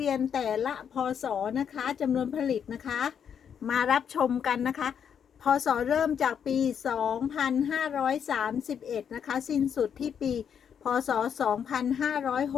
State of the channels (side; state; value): right; quieter; 7.9 dB